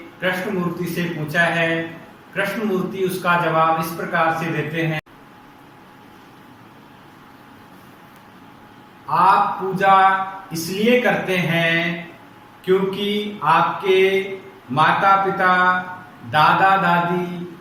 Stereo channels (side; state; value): both; identical; correlation 1.00